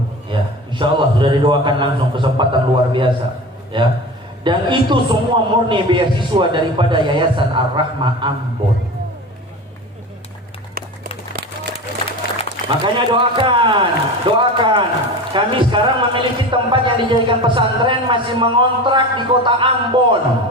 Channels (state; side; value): normal; both; correlation 0.32